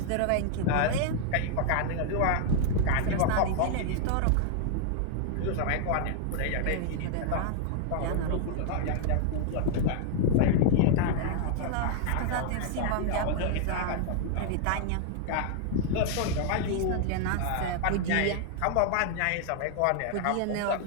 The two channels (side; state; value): both; different; correlation 0.00